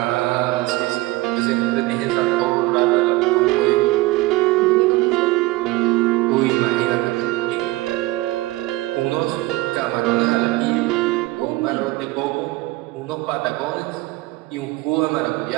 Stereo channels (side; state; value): left; quieter; 20.0 dB